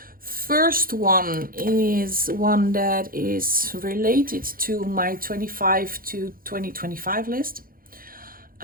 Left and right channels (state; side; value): late; left; 0.42 ms